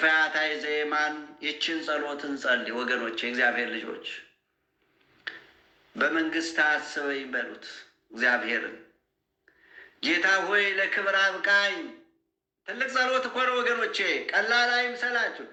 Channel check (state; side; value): identical; both; correlation 1.00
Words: ፈያታዊ ዘየማን ይችን ጸሎት እንጸልይ ወገኖቼ። እግዚአብሔር ልጆች በመንግስት አስበኝ በሉት እግዚአብሔርን። ጌታ ሆይ ለክብር አብቃኝ። ትልቅ ጸሎት እኮ ነው ወገኖቼ፣ ቀላል አይምሰላችሁ።